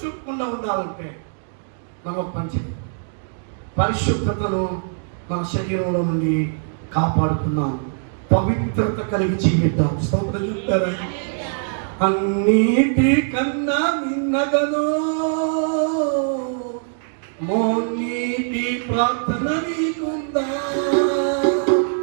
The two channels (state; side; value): silent; left; digital silence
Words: చూపకుండా ఉండాలంటే మనం పనిచేయాలి. పరిశుద్ధతను మన శరీరంలో నుండి కాపాడుతున్నాం. పవిత్రత కలిగి జీవిద్దాం. స్తోత్రం చెప్తారా? అన్నిటి కన్నా నిన్నదను మోనీటి ప్రార్థన నీకుందా?